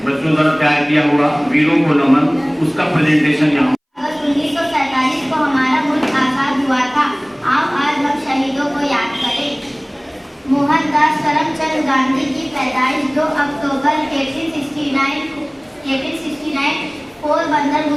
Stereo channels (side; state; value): both; identical; correlation 1.00